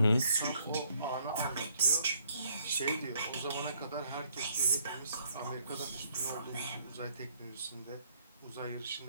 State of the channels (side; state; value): both; inverted; correlation -0.67